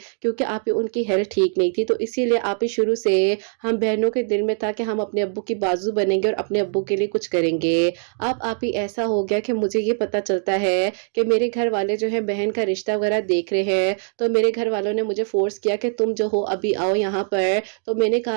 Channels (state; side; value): silent; left; 64 dB below the other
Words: क्योंकि आप ही उनकी हेल्थ ठीक नहीं थी। तो इसीलिए आप ही शुरू से हम बहनों के दिल में था कि हम अपने अब्बू की बाजू बनेंगे और अपने अब्बू के लिए कुछ करेंगे। अब आप ही ऐसा हो गया कि मुझे ये पता चलता है कि मेरे घर वाले जो है बहन का रिश्ता वगैरह देख रहे हैं। तो मेरे घर वालों ने मुझे फोर्स किया कि तुम जो हो अभी आओ यहाँ पर। तो मैंने